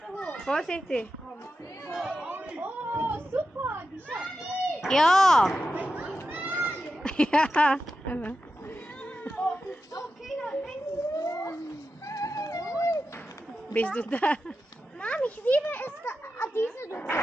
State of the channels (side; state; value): both; normal; correlation 0.91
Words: hoch. Vorsichtig. Oh, super. Die Schatten. Ja. Ja. Oh, okay, dann Bist du da? Mami, ich liebe es, diese Luft.